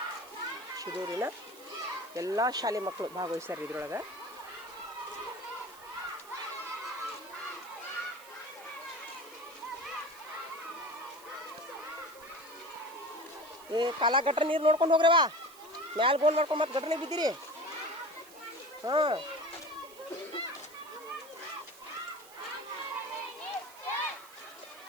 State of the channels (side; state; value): right; noise; hiss, 20 dB below the sound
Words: ಶಿರೂರಿನ ಎಲ್ಲ ಶಾಲೆ ಮಕ್ಕಳು ಭಾಗವಹಿಸ್ಯಾರ ಇದ್ರೊಳಗೆ. ಕಾಲ ಗಟ್ರ ನೀರು ನೋಡ್ಕೊಂಡು ಹೋಗ್ರವಾ, ಮ್ಯಾಲ ಗೋಲ್ ಮಾಡ್ಕೊಂಡು ಮತ್ತೆ ಗಟ್ರನೇ ಬಿದ್ದೀರಿ. ಹಾಂ